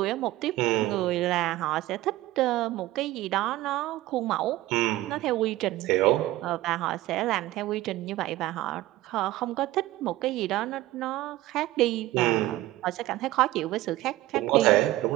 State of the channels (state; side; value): quieter; left; 16.8 dB